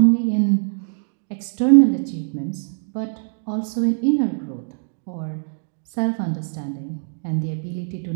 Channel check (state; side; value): silent; left; digital silence